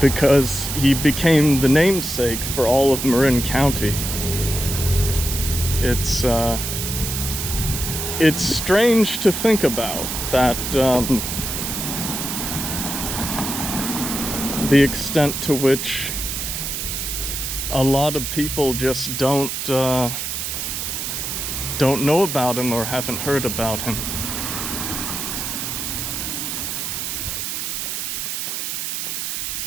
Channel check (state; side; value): noise; right; hiss, 3 dB below the sound